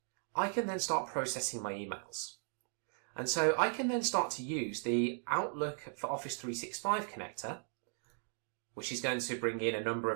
I can then start processing my emails. And so I can then start to use the Outlook for Office 365 connector, which is going to bring in a number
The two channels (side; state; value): left; silent; 53 dB below the other